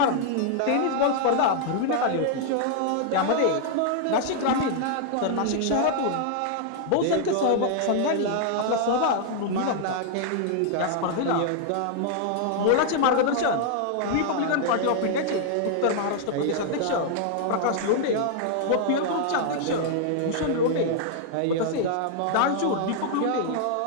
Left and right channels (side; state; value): both; different; correlation 0.00